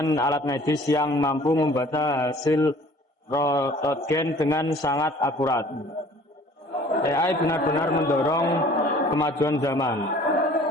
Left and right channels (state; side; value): normal; both; correlation 0.51